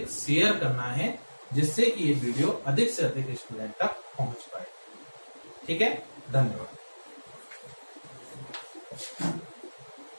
शेयर करना है, जिससे कि ये वीडियो अधिक से अधिक स्टूडेंट तक पहुंच पाए। ठीक है? धन्यवाद।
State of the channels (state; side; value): inverted; both; correlation -1.00